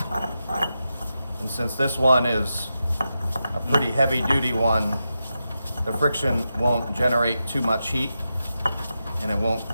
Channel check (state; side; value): inverted; both; correlation -0.88